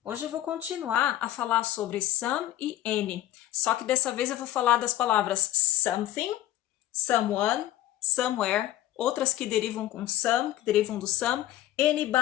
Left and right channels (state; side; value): quieter; right; 13.8 dB